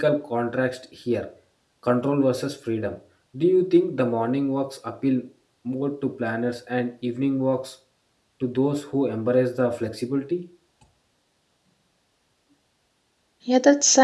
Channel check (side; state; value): both; identical; correlation 1.00